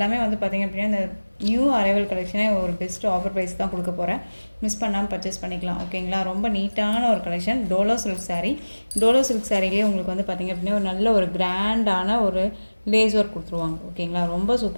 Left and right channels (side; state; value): both; inverted; correlation -1.00